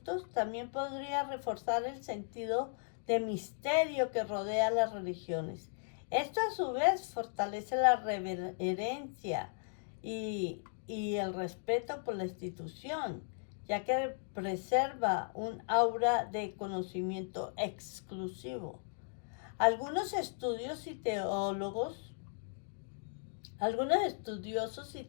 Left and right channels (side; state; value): right; silent; digital silence